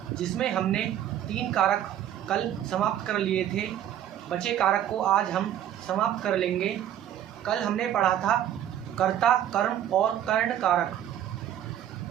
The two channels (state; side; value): quieter; left; 11.0 dB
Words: जिसमें हमने 3 कारक कल समाप्त कर लिए थे। बचे कारक को आज हम समाप्त कर लेंगे। कल हमने पढ़ा था कर्ता, कर्म और कर्ण कारक।